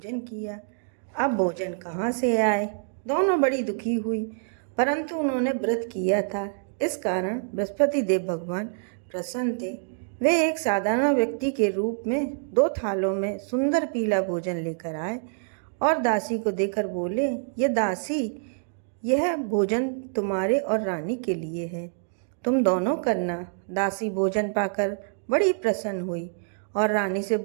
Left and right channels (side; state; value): left; silent; digital silence